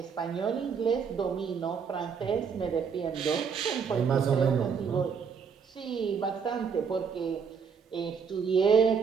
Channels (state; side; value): quieter; left; 6.3 dB